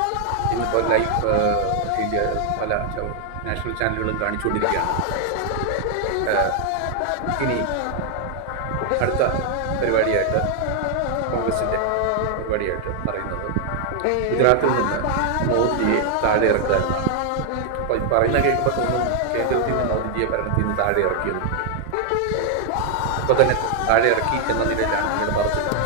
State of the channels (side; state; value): both; different; correlation 0.00